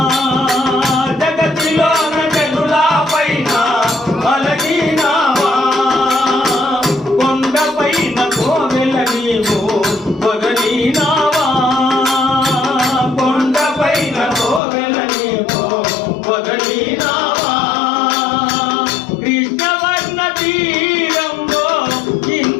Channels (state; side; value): drops out; right; at 14.6 s